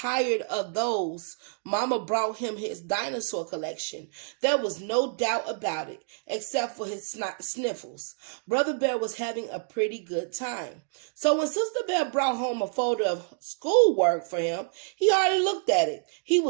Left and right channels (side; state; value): left; silent; 59 dB below the other